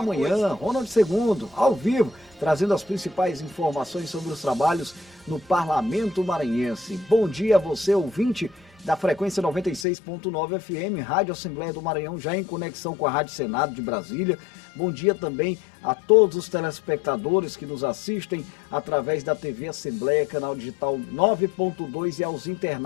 Manhã, Ronald II, ao vivo, trazendo as principais informações sobre os trabalhos no Parlamento Maranhense. Bom dia a você, ouvinte da frequência 96.9 FM, Rádio Assembleia do Maranhão, já em conexão com a Rádio Senado de Brasília. Bom dia também a todos os telespectadores que nos assistem através da TV Assembleia, canal digital 9.2, e aos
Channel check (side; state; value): right; drops out; at 9.9 s